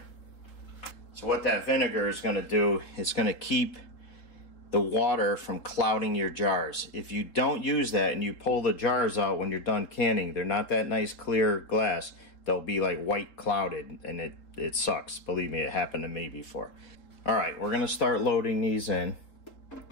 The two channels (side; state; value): right; late; 3.8 ms